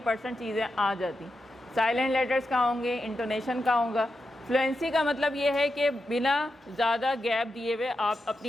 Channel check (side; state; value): both; normal; correlation 0.88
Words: चीज़ें आ जाती। साइलेंट लेटर्स कहाँ होंगे, इंटोनेशन कहाँ होगा। फ्लुएंसी का मतलब ये है कि बिना ज़्यादा गैप दिए हुए आप